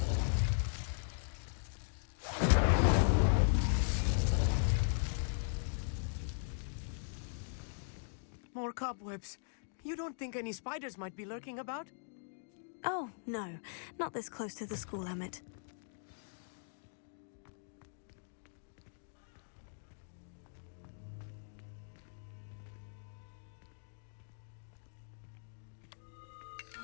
More cobwebs. You don't think any spiders might be lurking about? Oh, no. Not this close to the school, Amit.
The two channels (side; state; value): right; silent; digital silence